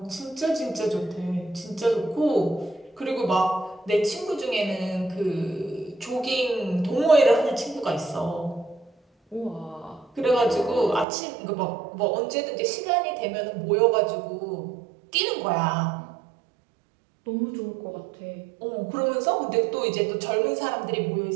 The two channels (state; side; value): drops out; left; at 11.1 s